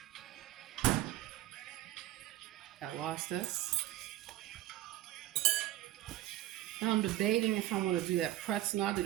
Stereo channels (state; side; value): quieter; left; 15.2 dB